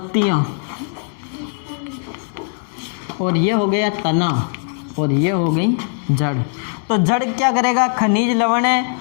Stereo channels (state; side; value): silent; right; 64 dB below the other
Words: और ये हो गया तना और ये हो गई जड़। तो जड़ क्या करेगा? खनिज, लवण है